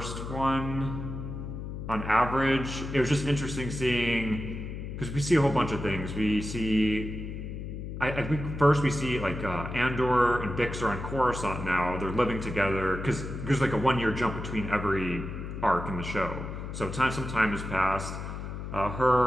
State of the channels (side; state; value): left; noise; hum, 7 dB below the sound